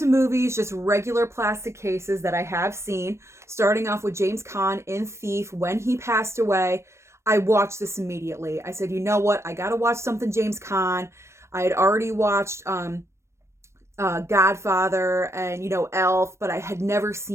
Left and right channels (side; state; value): left; late; 0.13 ms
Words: movies, just regular plastic cases that I have seen. Starting off with James Caan in Thief. When he passed away, I watched this immediately. I said, you know what? I got to watch something James Caan. I had already watched Godfather and, you know, Elf, but I had never